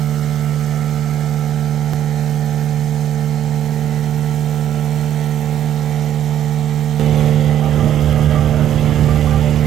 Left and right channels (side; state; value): left; quieter; 10.9 dB